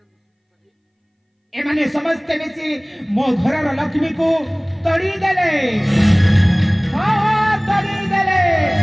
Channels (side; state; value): both; identical; correlation 1.00